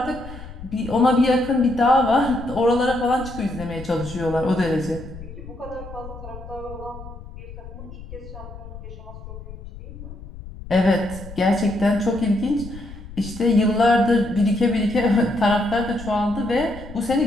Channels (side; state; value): left; noise; rumble, 14 dB below the sound